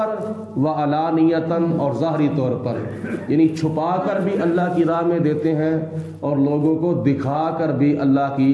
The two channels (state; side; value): identical; both; correlation 1.00